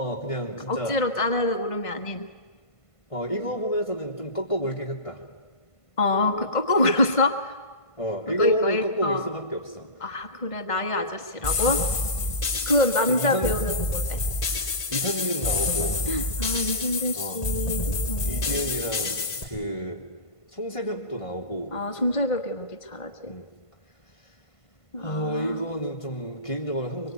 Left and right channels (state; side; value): late; right; 1.5 ms